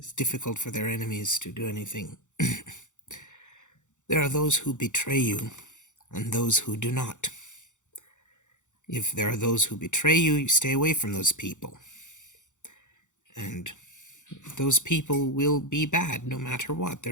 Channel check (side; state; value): right; late; 0.85 ms